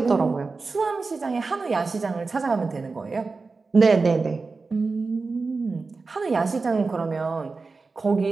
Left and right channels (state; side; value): quieter; left; 4.1 dB